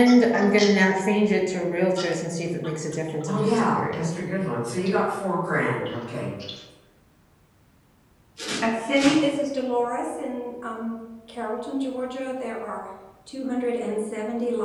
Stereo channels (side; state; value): both; identical; correlation 1.00